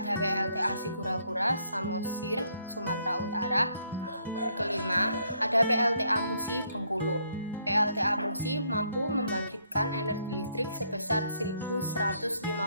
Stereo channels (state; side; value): inverted; both; correlation -0.70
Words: PLTA Sigura-Gura, Samosir, Sumatera Utara. Kelima ada PLTA Musi, Bengkulu. PLTA Musi mampu membangkitkan energi listrik sebesar 1.150